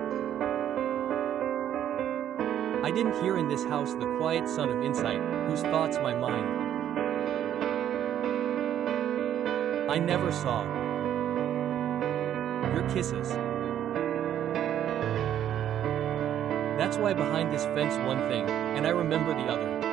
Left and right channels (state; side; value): quieter; left; 10.6 dB